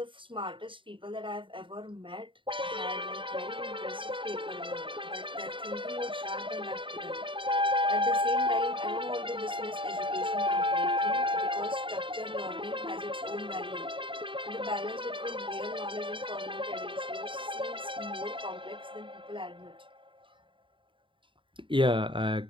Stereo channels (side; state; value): left; late; 0.25 ms